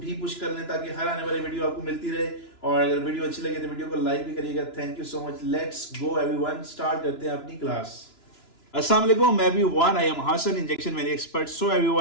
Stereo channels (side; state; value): right; late; 2.9 ms